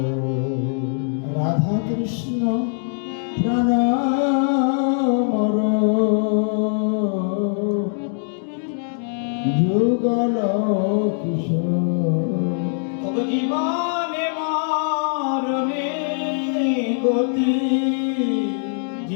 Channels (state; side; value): silent; right; digital silence